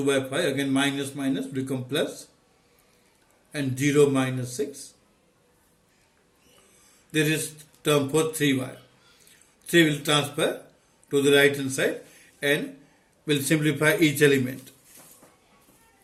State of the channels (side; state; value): both; identical; correlation 1.00